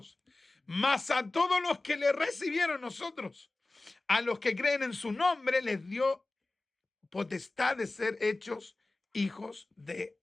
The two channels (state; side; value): quieter; right; 3.1 dB